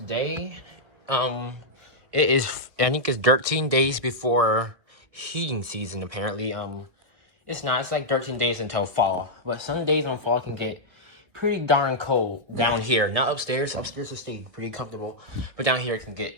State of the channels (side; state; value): left; late; 1.6 ms